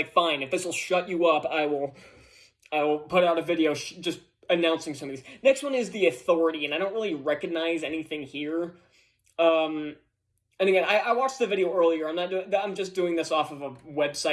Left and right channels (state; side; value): identical; both; correlation 1.00